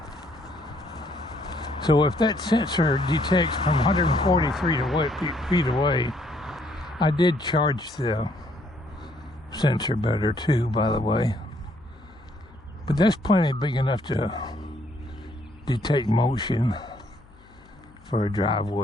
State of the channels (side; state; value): left; noise; hum, 26 dB below the sound